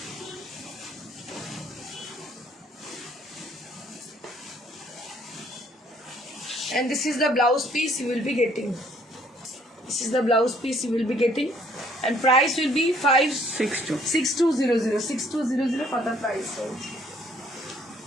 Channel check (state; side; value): normal; both; correlation 0.63